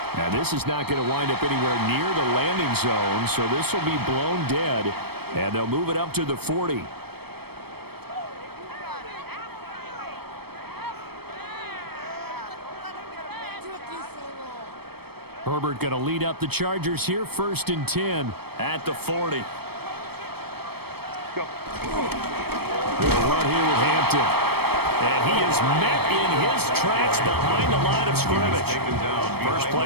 Now this is not going to wind up anywhere near the landing zone, so this will be blown dead, and they'll move it up to the 40. Herbert going to lead up the Chargers here, 1st and 10 at the 40. They'll run here with Hampton. And he is met in his tracks behind the line of scrimmage. First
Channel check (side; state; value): left; late; 0.97 ms